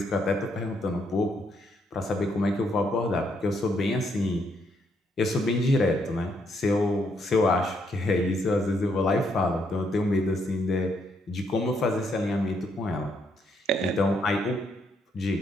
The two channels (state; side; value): normal; both; correlation 0.74